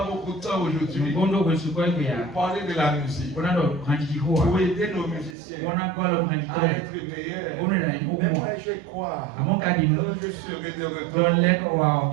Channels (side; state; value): left; drops out; at 5.4 s